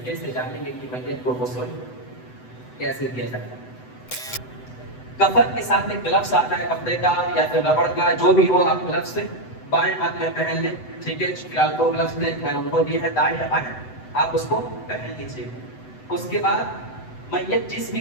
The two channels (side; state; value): right; late; 7.9 ms